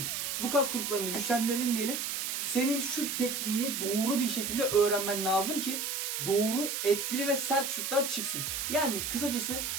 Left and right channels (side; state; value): right; noise; hiss, 2 dB below the sound